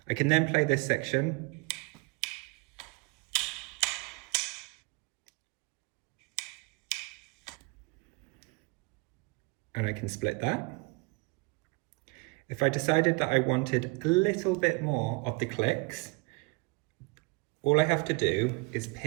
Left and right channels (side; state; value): left; quieter; 27.7 dB